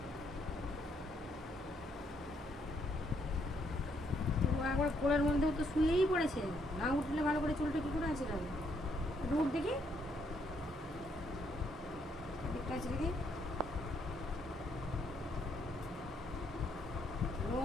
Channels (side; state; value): both; normal; correlation 0.73